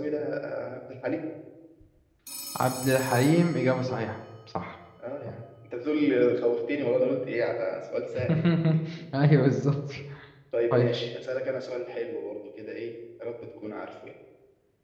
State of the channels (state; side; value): identical; both; correlation 1.00